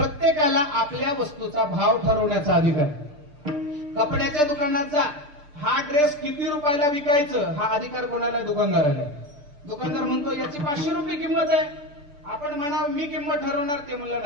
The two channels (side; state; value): left; late; 6.7 ms